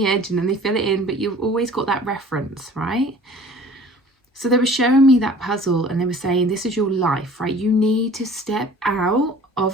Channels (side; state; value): both; normal; correlation 0.48